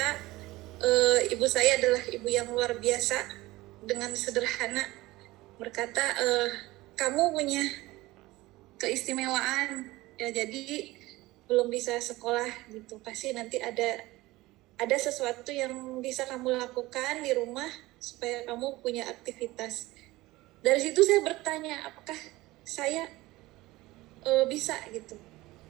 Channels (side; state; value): left; quieter; 19.2 dB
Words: ibu saya adalah ibu yang luar biasa, dengan sederhana berkata, kamu punya keistimewaan ya, jadi belum bisa sekolah gitu, pasti nanti ada sesuatu yang bisa kamu lakukan di rumah supaya kamu punya aktivitas. Dari situ saya bertanya, apakah saya bisa gitu,